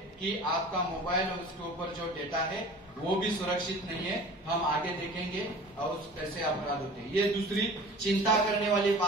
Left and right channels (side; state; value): both; normal; correlation 0.41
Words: कि आपका मोबाइल और उसके ऊपर जो डेटा है वो भी सुरक्षित नहीं है। हम आगे देखेंगे और कैसे अपराध होते हैं। ये दूसरी चिंता करने वाली